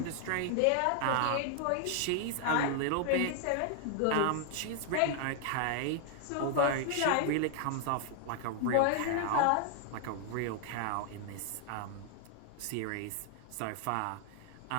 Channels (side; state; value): both; different; correlation 0.00